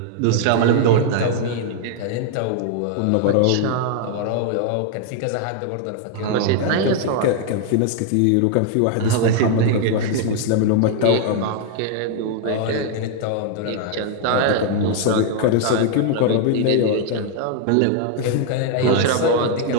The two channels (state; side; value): different; both; correlation 0.00